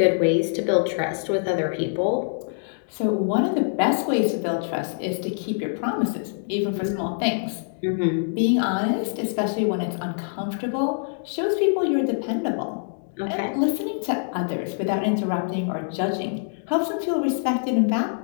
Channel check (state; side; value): silent; right; digital silence